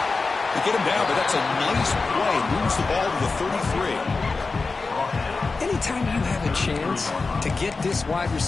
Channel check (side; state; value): right; quieter; 4.0 dB